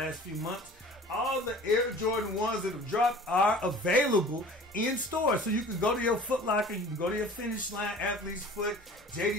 few months. All the Air Jordan 1s that have dropped are available in stores. So you can go to your Foot Locker, you can go to your Finish Line, Athlete's Foot,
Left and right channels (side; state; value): both; normal; correlation 0.44